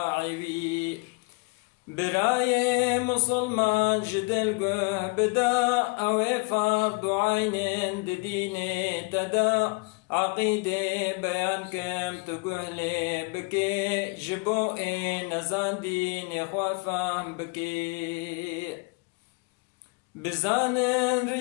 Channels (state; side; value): quieter; right; 29.4 dB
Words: براي مسلمان جدل قه بدا او فرض عين ديني تدا عقيدة بيان كم تقهلي بكي جبوئي نزان ديني خوافام بكي بزانن